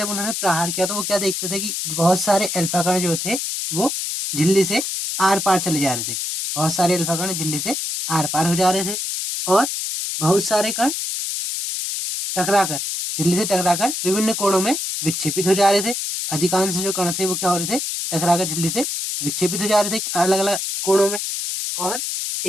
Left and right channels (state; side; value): noise; left; hiss, 3 dB below the sound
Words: उन्होंने प्रहार किया तो वो क्या देखते थे कि बहुत सारे अल्फा कण जो थे वो झिल्ली से आर पार चले जा रहे थे, बहुत सारे अल्फा कण झिल्ली से आर पार हो जा रहे थे, और बहुत सारे कण टकराकर, झिल्ली से टकराकर विभिन्न कोणों में विक्षेपित हो जा रहे थे। अधिकांश जो कण थे वो क्या हो रहे थे, टकराकर झिल्ली से विक्षेपित हो जा रहे थे अलग अलग कोणों में। और